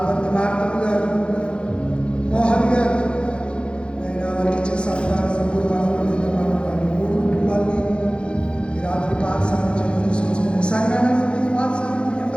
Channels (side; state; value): right; late; 0.056 ms